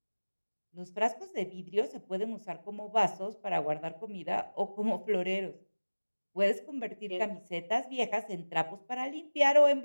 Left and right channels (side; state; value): both; inverted; correlation -1.00